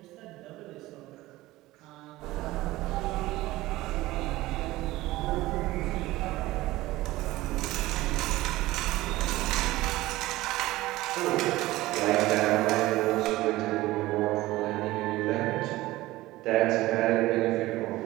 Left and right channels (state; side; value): quieter; left; 17.9 dB